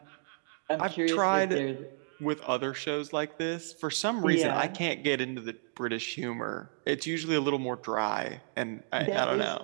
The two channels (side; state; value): left; silent; digital silence